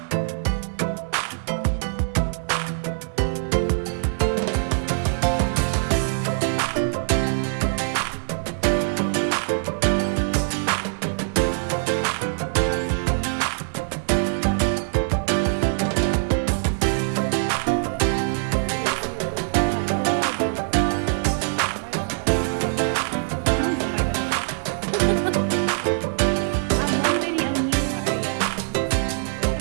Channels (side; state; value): left; silent; digital silence